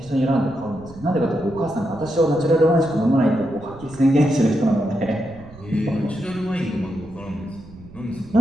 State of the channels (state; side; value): noise; right; rumble, 19 dB below the sound